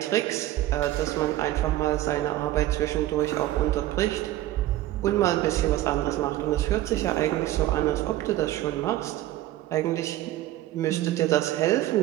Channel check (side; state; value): left; quieter; 14.7 dB